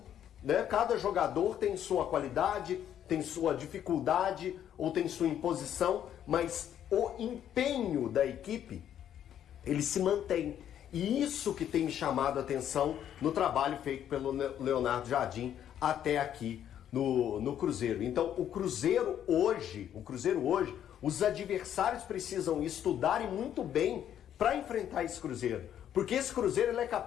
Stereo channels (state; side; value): quieter; right; 10.2 dB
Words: né? Cada jogador tem sua qualidade, tem sua dificuldade ou tem sua imposição, mas o empenho da equipe, ele se mantém. E isso que tem me chamado a atenção no trabalho feito pelo Leonardo Jardim até aqui no Cruzeiro. Então, o Cruzeiro hoje, os adversários precisam estudarem muito bem para enfrentar esse Cruzeiro. Porque esse Cruzeiro ele é